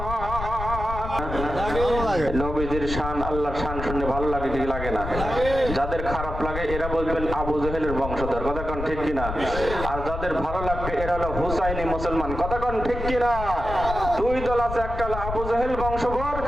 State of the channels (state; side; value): noise; left; rumble, 6 dB below the sound